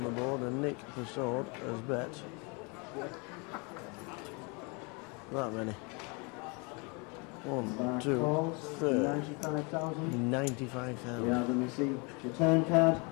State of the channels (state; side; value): quieter; right; 31.2 dB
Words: the board, and Nik Persaud has bet that many. 1, 2, 3, 95,000. Yeah, let me see. It's your turn card.